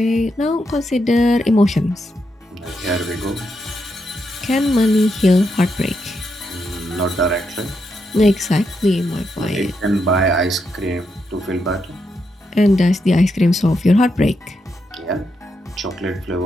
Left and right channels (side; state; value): both; normal; correlation 0.82